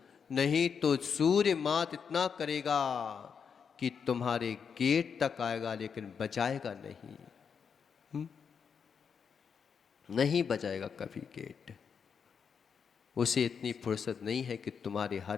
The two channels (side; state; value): right; quieter; 6.6 dB